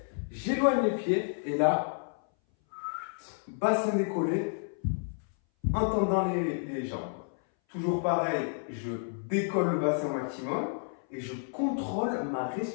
j'éloigne les pieds et là, bassin décollé, en tendant les jambes. Toujours pareil, je décolle le bassin au maximum et je contrôle ma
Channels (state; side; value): silent; right; 57 dB below the other